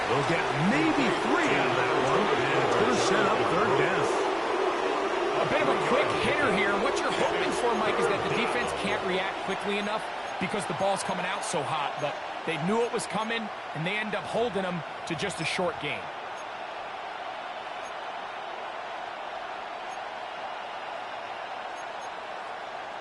They'll get maybe 3 out of that one, and it's going to set up 3rd down. A bit of a quick hitter here. What you're hoping for, Mike, is that the defense can't react quickly enough because the ball's coming out so hot, but they knew it was coming, and they end up holding them to just a short gain.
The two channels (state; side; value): identical; both; correlation 1.00